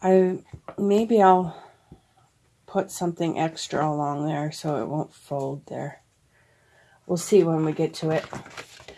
Maybe I'll put something extra along there so it won't fold there. We'll see when we get to it.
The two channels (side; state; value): both; identical; correlation 1.00